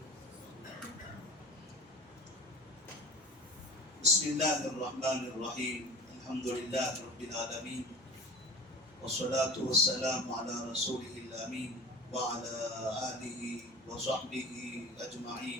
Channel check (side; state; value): both; normal; correlation 0.37